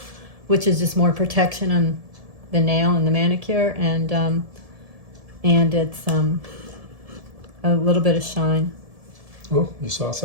which is just more protection on the nail and the manicure, and it's a little bit of shine. Oh, you saw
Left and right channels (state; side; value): late; left; 1.7 ms